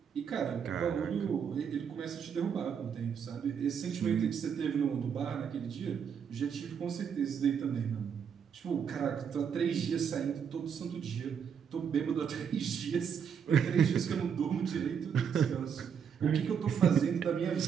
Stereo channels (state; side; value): quieter; left; 7.4 dB